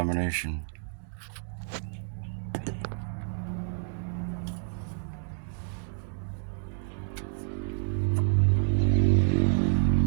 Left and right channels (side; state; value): left; silent; digital silence